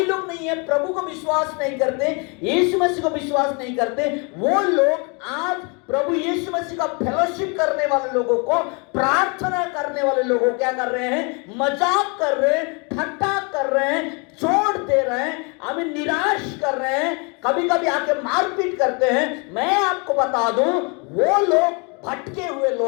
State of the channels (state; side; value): quieter; right; 32.8 dB